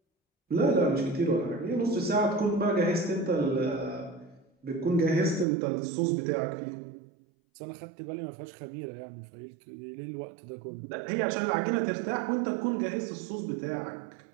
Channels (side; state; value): left; drops out; at 5.5 s